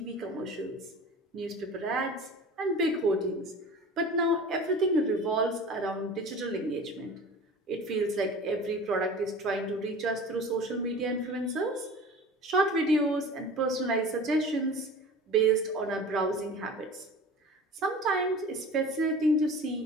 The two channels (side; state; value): both; normal; correlation 0.39